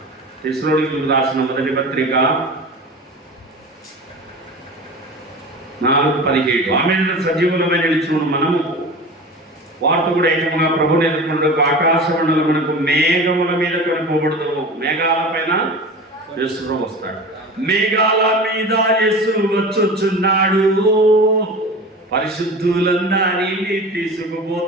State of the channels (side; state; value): both; normal; correlation 0.34